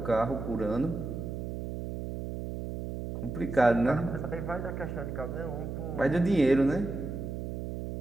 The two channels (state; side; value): noise; right; hum, 6 dB below the sound